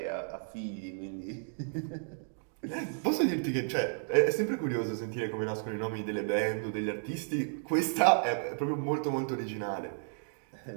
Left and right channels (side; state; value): left; silent; digital silence